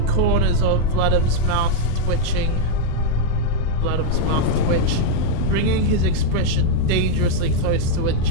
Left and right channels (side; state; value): both; different; correlation 0.00